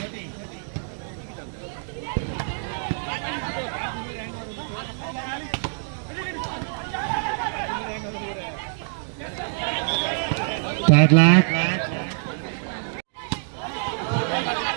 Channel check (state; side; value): silent; left; digital silence